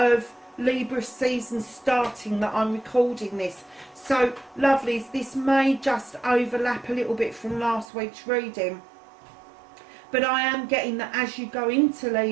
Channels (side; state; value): left; drops out; at 7.9 s